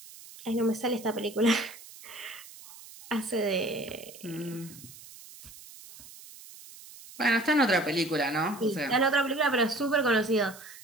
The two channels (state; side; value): noise; right; hiss, 18 dB below the sound